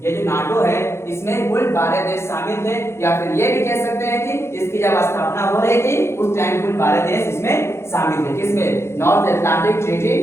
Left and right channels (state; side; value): late; right; 0.13 ms